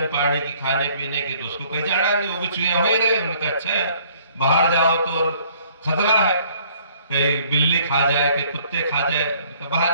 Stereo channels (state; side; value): inverted; both; correlation -0.59